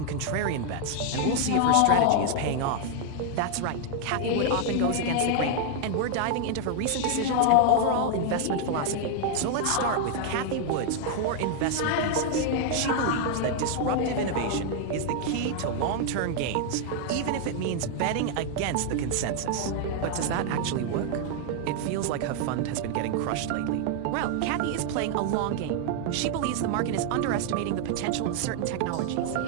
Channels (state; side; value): different; both; correlation 0.00